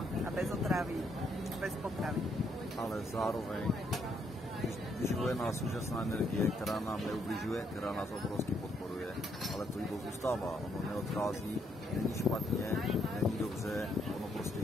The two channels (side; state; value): both; normal; correlation 0.73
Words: a bez otravy, bez potravy. Ale zároveň vyživuje nás úžasná energie, která nám neubližuje, která nás obrovsky podporuje, ale to jídlo zůstává, ono neodchází, není špatně, není dobře, ono prostě